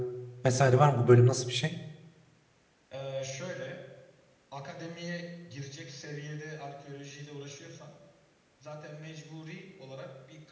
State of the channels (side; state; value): both; identical; correlation 1.00